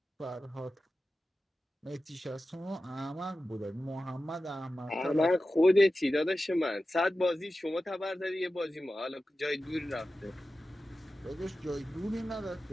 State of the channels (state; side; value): normal; both; correlation 0.94